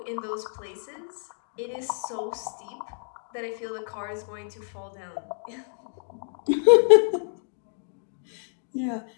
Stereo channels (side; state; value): right; silent; digital silence